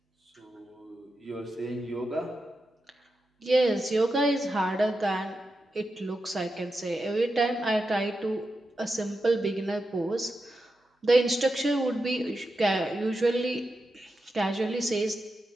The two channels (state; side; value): normal; both; correlation 0.89